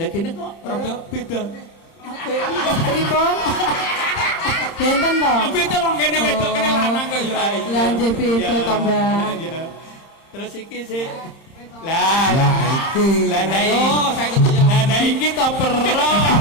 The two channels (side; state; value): right; late; 31 ms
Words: kene kok rada beda. Apa? Pripun? Benten to? Beda wong kene wedok kene lanang kok ya. Lah nggih beda to, Mbak. Iya. Terus iki sih. Lah, Lah iki. lah nah Ayo, iki. saya ketemu. Lah iki to perlo.